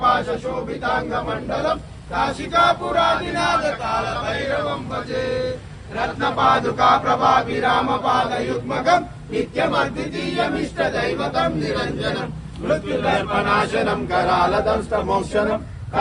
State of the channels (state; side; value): identical; both; correlation 1.00